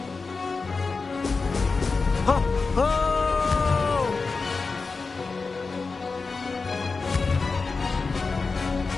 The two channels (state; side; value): quieter; right; 4.3 dB